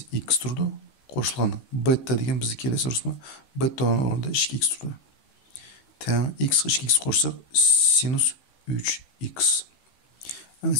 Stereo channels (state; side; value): late; right; 15 ms